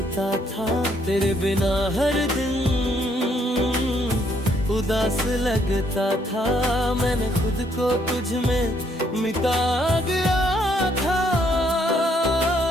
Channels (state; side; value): normal; both; correlation 0.70